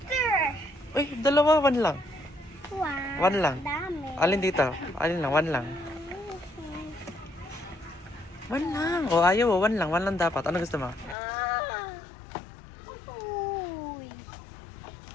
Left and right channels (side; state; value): right; drops out; at 11.2 s